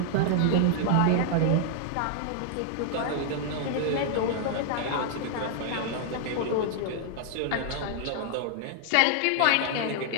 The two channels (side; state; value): both; different; correlation 0.00